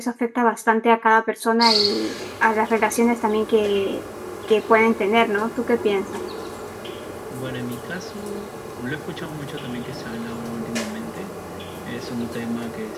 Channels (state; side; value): identical; both; correlation 1.00